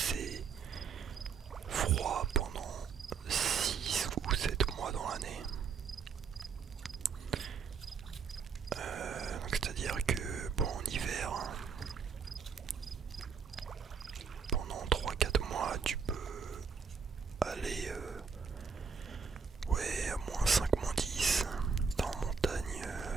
froid pendant 6 ou 7 mois dans l'année. Donc c'est-à-dire que bon, en hiver, pendant 3-4 mois, tu peux aller ouais, à -5, -10 en montagne,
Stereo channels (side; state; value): left; quieter; 5.9 dB